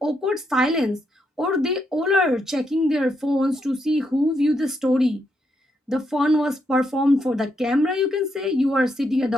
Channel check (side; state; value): both; normal; correlation 0.79